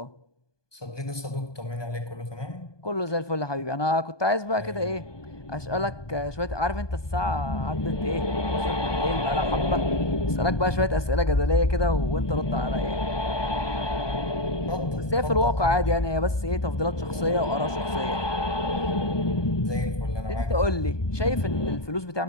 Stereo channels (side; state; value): right; late; 1.2 ms